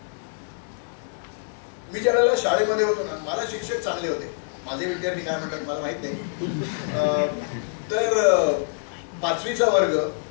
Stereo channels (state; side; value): silent; right; digital silence